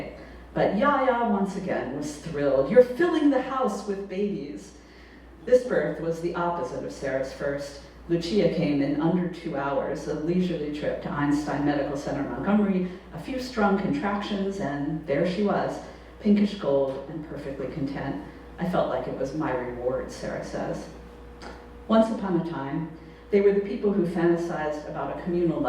But Yaya, once again, was thrilled. "You're filling the house with babies." This birth was the opposite of Sarah's first. Lucia came in under 2 hours, a leisurely trip to Einstein Medical Center, Montgomery, a few strong contractions, and there she was, pinkish gold and perfectly content. I felt like it was my reward, Sarah says. Once upon a time, they were the people who fantasized about a communal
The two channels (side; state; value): both; identical; correlation 1.00